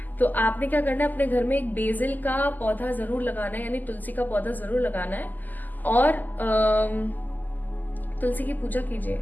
तो आपने क्या करना है, अपने घर में एक बेसिल का पौधा जरूर लगाना है, यानी तुलसी का पौधा जरूर लगाना है, और तुलसी की पूजा कीजिए,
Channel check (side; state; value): right; late; 0.084 ms